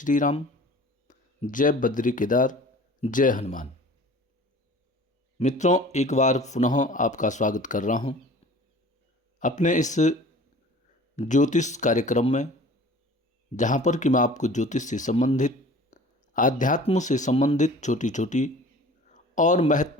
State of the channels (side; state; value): both; normal; correlation 0.45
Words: राम, जय बद्री केदार, जय हनुमान। मित्रों, एक बार पुनः आपका स्वागत कर रहा हूं अपने इस ज्योतिष कार्यक्रम में, जहां पर कि मैं आपको ज्योतिष से संबंधित, आध्यात्म से संबंधित छोटी छोटी और